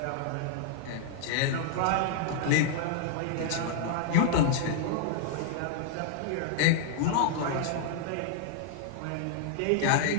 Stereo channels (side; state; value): both; different; correlation -0.01